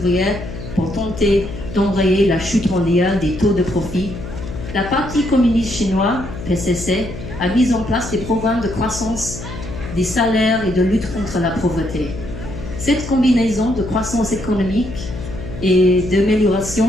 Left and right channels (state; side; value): noise; left; hum, 10 dB below the sound